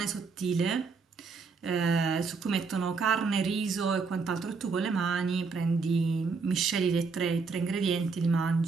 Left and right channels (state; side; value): quieter; left; 4.8 dB